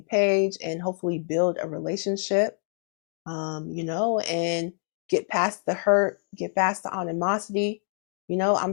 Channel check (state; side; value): silent; right; 61 dB below the other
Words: page and hopefully build a relationship, and get past the hurt, get past the animosity.